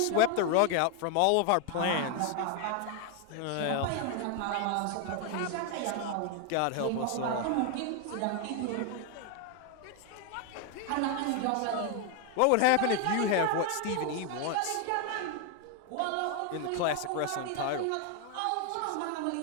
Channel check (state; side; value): different; both; correlation 0.01